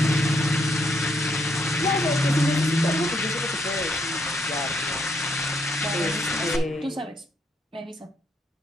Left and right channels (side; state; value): both; normal; correlation 0.74